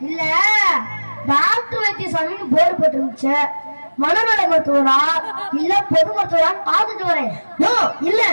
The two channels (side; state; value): both; inverted; correlation -1.00